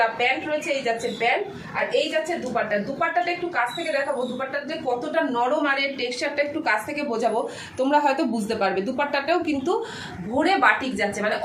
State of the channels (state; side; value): identical; both; correlation 1.00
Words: প্যান্ট রয়েছে। এই যাচ্ছে প্যান্ট, আর এই যাচ্ছে দুপাট্টা। দুপাট্টাটা একটু কাছ থেকে দেখাবো, দুপাট্টাটা যে কতটা নরম আর এর টেক্সচারটা একটু কাছ থেকে বোঝাবো, তোমরা হয়তো বুঝতে পারবে। দুপাট্টাটাও কিন্তু ভরে বাটিক যাচ্ছে, মানে